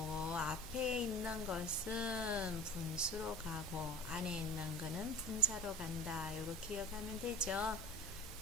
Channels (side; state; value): both; normal; correlation 0.40